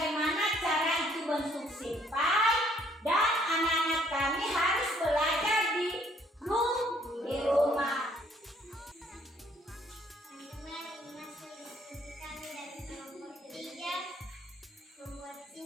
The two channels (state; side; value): normal; both; correlation 0.64